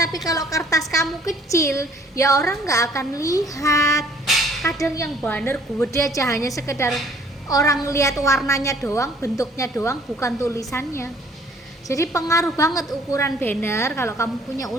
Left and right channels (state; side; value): normal; both; correlation 0.58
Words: kalau kertas kamu kecil, ya orang nggak akan lihat. Kadang yang banner gede aja hanya sekedar orang lihat warnanya doang, bentuknya doang, bukan tulisannya. Jadi pengaruh banget ukuran banner kalau kamu punya